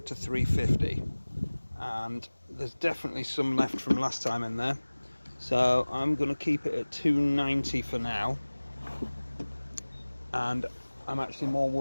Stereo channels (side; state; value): both; inverted; correlation -1.00